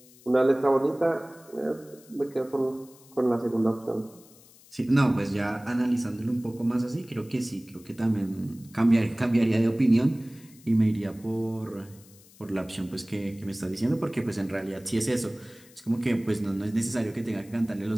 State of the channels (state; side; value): noise; left; hiss, 25 dB below the sound